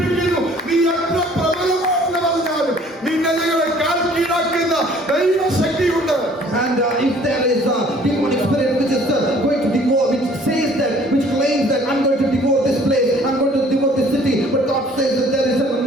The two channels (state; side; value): normal; both; correlation 0.55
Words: നീ എത്ര പ്രബലമാണെന്ന് പറഞ്ഞാലും നിന്നെ ഞങ്ങളെ കാൽ കീഴാക്കുന്ന ദൈവശക്തിയുണ്ട്. And if there is a demonic spirit which is going to devour, which says that, which claims that I'm going to devour this place, I'm going to devour this city, but God says that there is an